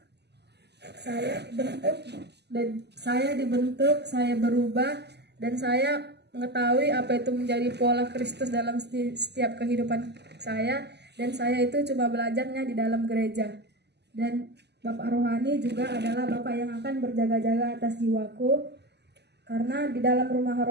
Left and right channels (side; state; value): left; late; 0.49 ms